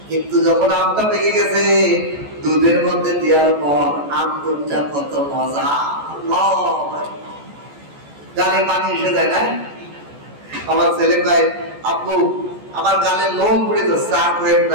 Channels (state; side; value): late; left; 14 ms